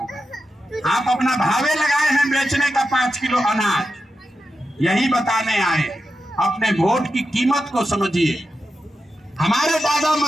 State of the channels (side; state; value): both; normal; correlation 0.89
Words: आप अपना भावे लगाए हैं बेचने का 5 किलो अनाज। यही बताने आए, अपने वोट की कीमत को समझिए। हमारे दादा